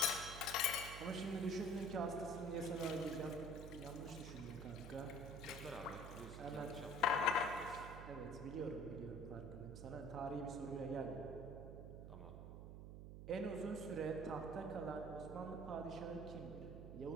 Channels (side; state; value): right; noise; hum, 9 dB below the sound